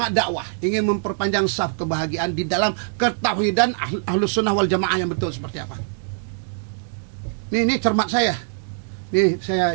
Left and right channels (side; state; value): left; silent; digital silence